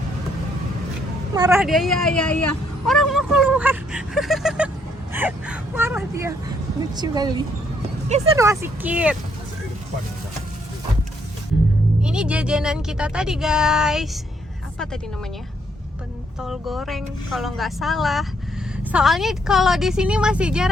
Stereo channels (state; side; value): normal; both; correlation 0.71